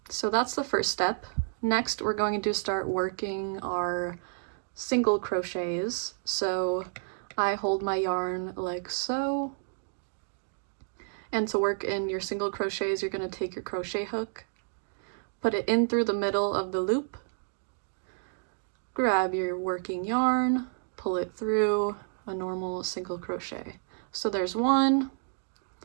So that's the first step. Next, we're going to start working our single crochets. So I hold my yarn like so. And to work in your single crochets, you're going to take your crochet hook, put it in through the middle of the loop, grab your working yarn, pull it through a normal single crochet. So there's 1,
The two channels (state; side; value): silent; left; digital silence